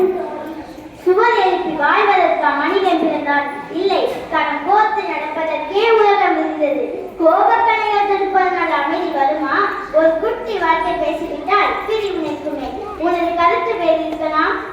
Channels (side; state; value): both; identical; correlation 1.00